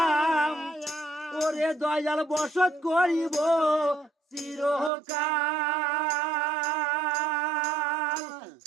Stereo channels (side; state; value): left; drops out; at 4.9 s